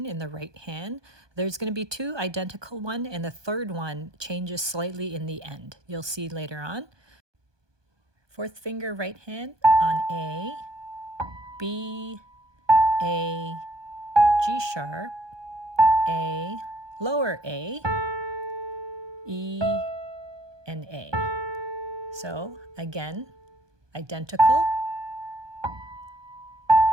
in the right hand. There's going to be 2 identical ones, and the third one changes slightly in the end. You'll see later on. 4th finger right hand on A, B, A, G sharp, A, lower A, E, and A. So again, identical.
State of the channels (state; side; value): late; left; 1.2 ms